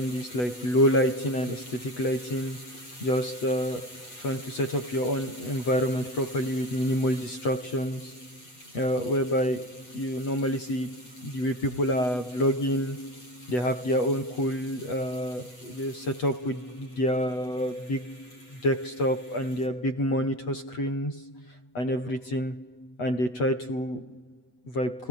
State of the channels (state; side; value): late; right; 8.1 ms